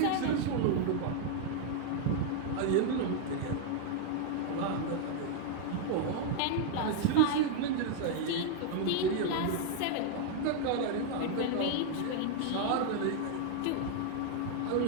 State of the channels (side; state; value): both; different; correlation 0.00